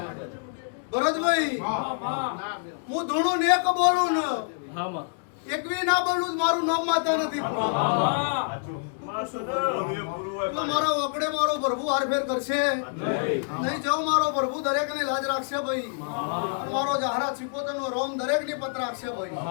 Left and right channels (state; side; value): silent; right; 60 dB below the other